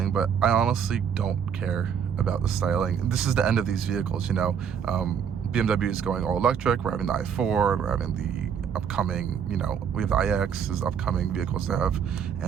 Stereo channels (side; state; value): left; quieter; 7.7 dB